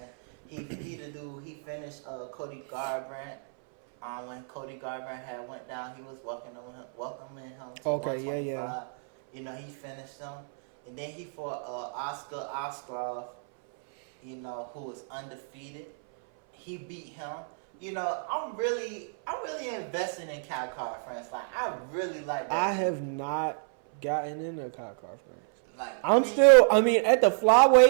He the dude, he finished Cody Garbrandt. When Cody Garbrandt had went down, he was welcoming him to 125. Yeah. You know, he finished him. And then he fought Oscar Oskarov, you know, who was undefeated. He beat him. You know, I'm really invested in Khamzat France. Like, I really like that. I have not gotten into Khamzat France. Like, I mean, at the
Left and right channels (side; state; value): left; silent; 58 dB below the other